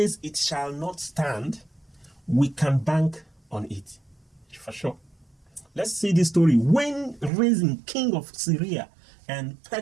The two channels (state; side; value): drops out; left; at 7.3 s